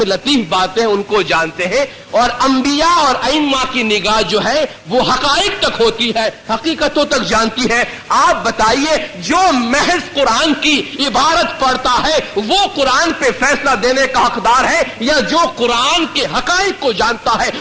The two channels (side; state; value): both; identical; correlation 1.00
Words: लतीफ बातें उनको जानते हैं। और अंबिया और अइम्मा की निगाह जो है वो हकाइक तक होती है, हकीकतों तक जानती है। आप बताइए जो महज कुरान की इबारत पढ़ता है वो कुरान पे फैसला देने का हकदार है, या जो कुरान के हकाइक को जानता है